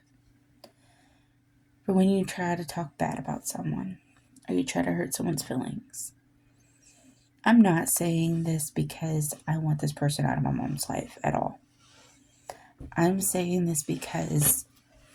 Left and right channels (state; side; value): identical; both; correlation 1.00